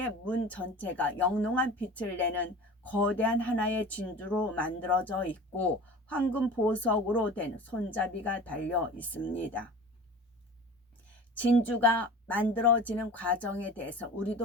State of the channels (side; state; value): both; normal; correlation 0.37